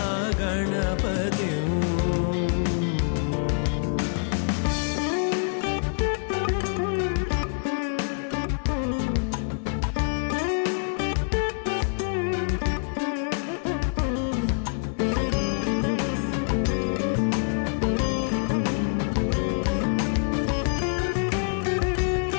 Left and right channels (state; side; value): silent; right; digital silence